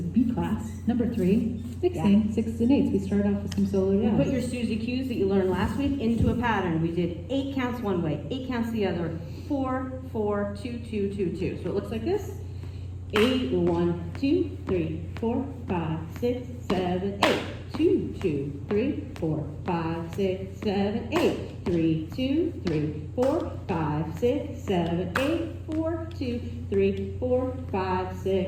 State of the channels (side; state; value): both; identical; correlation 1.00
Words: class, number 3, mixing 6s and 8s. We started off with some solo jazz. You put your Suzy cues that you learned last week into a pattern. We did 8 counts one way, 8 counts the other, 4, 4, 2, 2, 2, 2. So it looks like this. 8, 1, 2, 3, 4, 5, 6, 7, 8. 2, 2, 3, 4, 5, 6, 7, 8. 3, 2, 3, 4, 5, 6, 7, 8. 4, 2, 3, 4, 5,